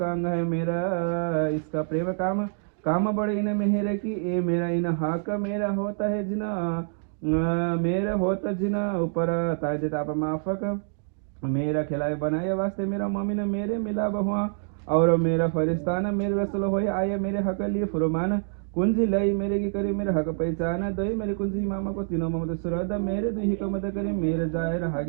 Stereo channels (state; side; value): silent; left; digital silence